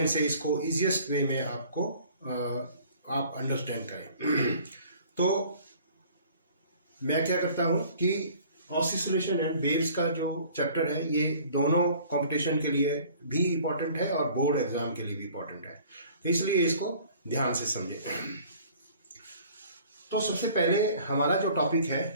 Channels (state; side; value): inverted; both; correlation -0.51